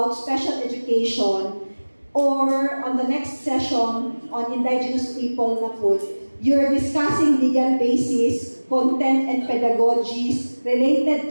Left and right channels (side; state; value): both; inverted; correlation -1.00